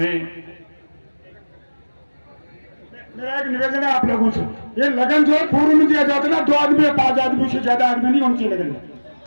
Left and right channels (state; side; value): inverted; both; correlation -1.00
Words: मेरा एक निवेदन है आप लोगों से, ये लगन जो है पूर्व में दिया जाता है ना, 2 आदमी या 5 आदमी से ज्यादा आदमी नहीं होनी चाहिए लगन में।